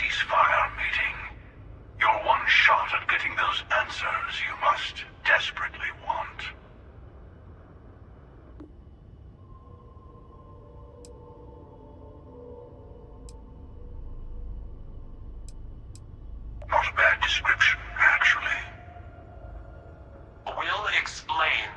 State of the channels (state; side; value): identical; both; correlation 1.00